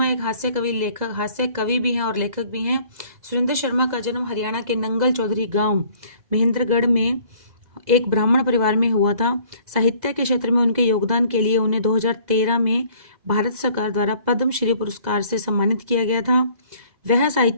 एक हास्य कवि भी हैं और लेखक भी हैं। सुरेंद्र शर्मा का जन्म हरियाणा के नंगल चौधरी गांव महेंद्रगढ़ में एक ब्राह्मण परिवार में हुआ था। साहित्य के क्षेत्र में उनके योगदान के लिए उन्हें 2013 में भारत सरकार द्वारा पद्मश्री पुरस्कार से सम्मानित किया गया था। वह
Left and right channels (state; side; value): late; left; 2.0 ms